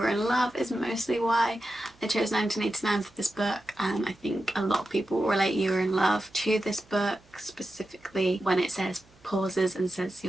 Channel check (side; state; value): right; noise; hum, 29 dB below the sound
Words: in Love is mostly why I chose 1989 for this book. I think a lot of people relate You Were in Love to this book, specifically when it says, pauses and says,